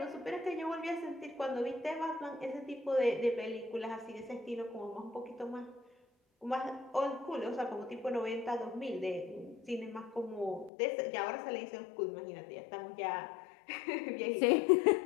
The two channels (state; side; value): drops out; right; at 10.7 s